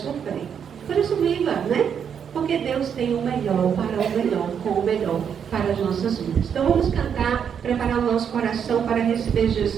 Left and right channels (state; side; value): quieter; left; 7.7 dB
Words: Por isso, viva, né? Porque Deus tem o melhor para o melhor, com o melhor para as nossas vidas. Então vamos cantar, preparar o nosso coração para receber